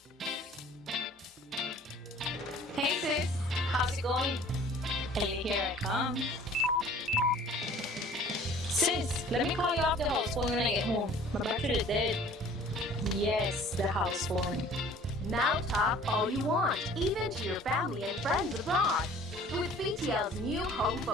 Hey sis, how's it going? Ellie, here I come. Sis, let me call you off the house phone when I get home. My battery is dead. Yes, the house phone. Now talk all you want, even to your family and friends abroad. With BTL's new home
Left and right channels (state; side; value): normal; both; correlation 0.50